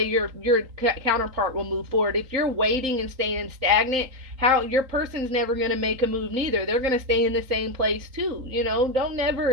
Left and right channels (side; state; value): left; late; 3.8 ms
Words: your counterpart will move forward. If you're waiting and staying stagnant, how your person's never going to make a move neither. They're going to stay in the same place too. Don't